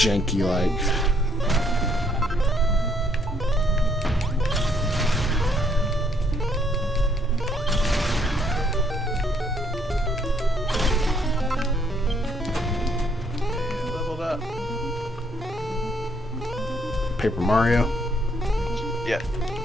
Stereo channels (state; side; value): normal; both; correlation 0.69